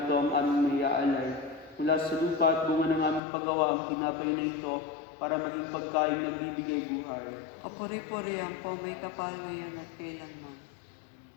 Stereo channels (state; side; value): drops out; right; at 3.2 s